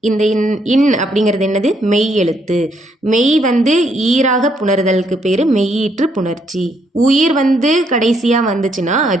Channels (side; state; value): both; normal; correlation 0.73